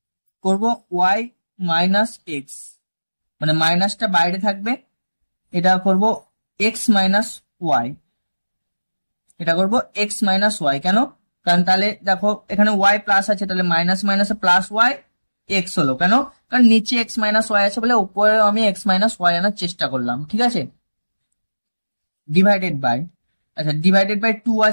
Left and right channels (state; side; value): inverted; both; correlation -1.00